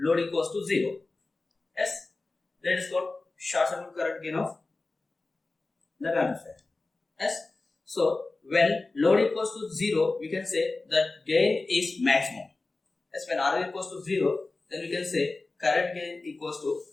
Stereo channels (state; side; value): quieter; right; 3.4 dB